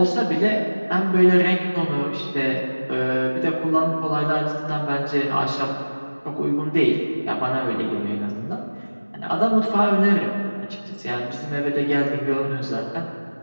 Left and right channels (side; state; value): both; inverted; correlation -1.00